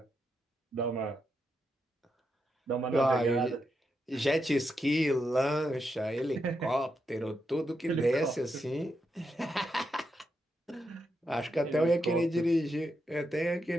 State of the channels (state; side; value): normal; both; correlation 0.84